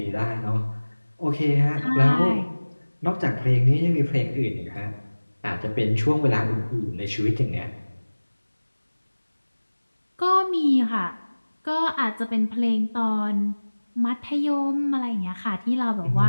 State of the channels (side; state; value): both; inverted; correlation -1.00